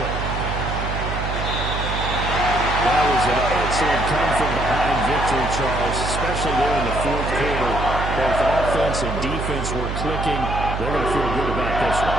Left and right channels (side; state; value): right; noise; hum, 4 dB below the sound